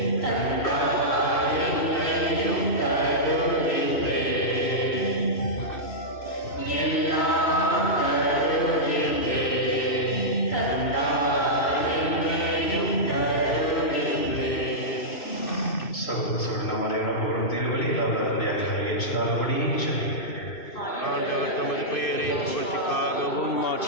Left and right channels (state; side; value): late; right; 2.6 ms